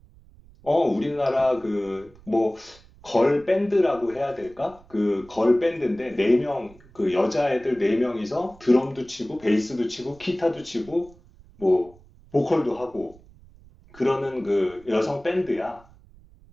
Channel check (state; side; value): noise; right; rumble, 25 dB below the sound